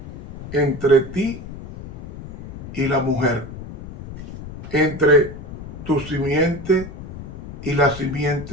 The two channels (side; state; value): left; noise; rumble, 12 dB below the sound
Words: entre ti y la mujer, entre tu simiente y la